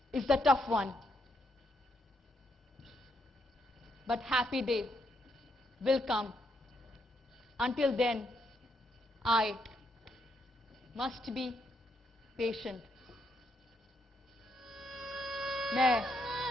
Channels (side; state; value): both; normal; correlation 0.77